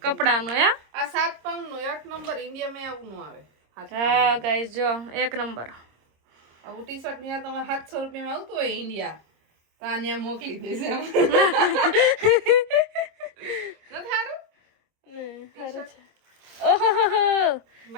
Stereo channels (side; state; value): left; late; 26 ms